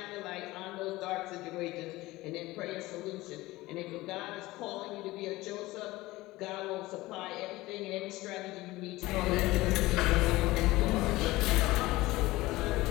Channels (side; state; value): right; quieter; 19.0 dB